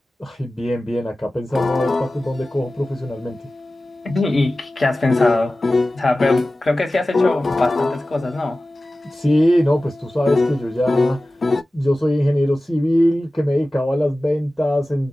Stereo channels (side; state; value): both; normal; correlation 0.96